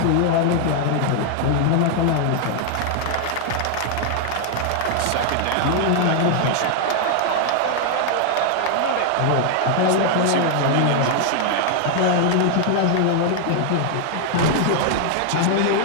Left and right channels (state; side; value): different; both; correlation 0.00